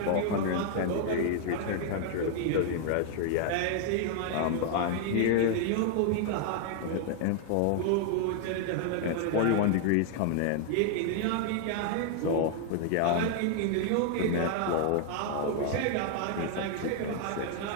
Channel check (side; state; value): both; different; correlation 0.00